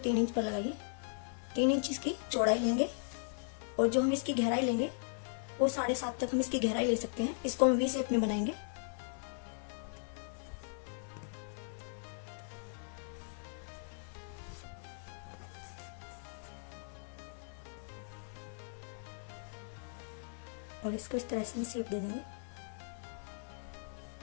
इंच पर लगाइए। 3 इंच इसकी चौड़ाई लेंगे और जो हम इसकी गहराई लेंगे वो 7.5 तक हम इसकी गहराई ले सकते हैं। इसको हम वी शेप में बनाएंगे। और इसको इस तरह से शेप दे देंगे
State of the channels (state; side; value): silent; right; 52 dB below the other